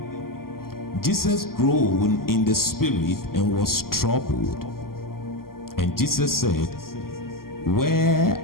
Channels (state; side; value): late; right; 0.92 ms